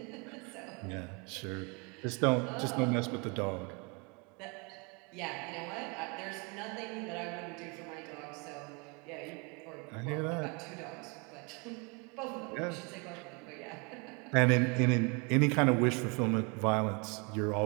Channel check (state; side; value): quieter; left; 31.6 dB